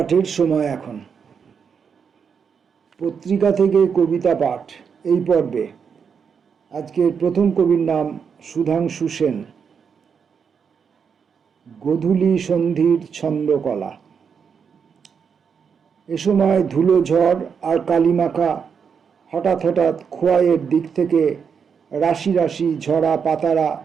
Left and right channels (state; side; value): quieter; left; 6.5 dB